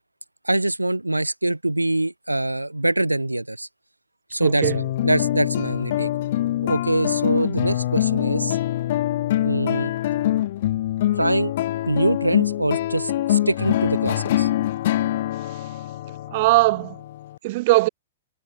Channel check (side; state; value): both; inverted; correlation -0.61